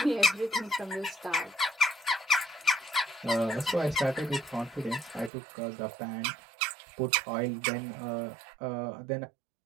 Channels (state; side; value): drops out; left; at 5.3 s